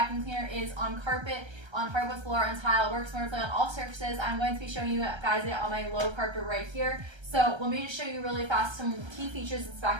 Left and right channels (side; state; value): left; late; 1.3 ms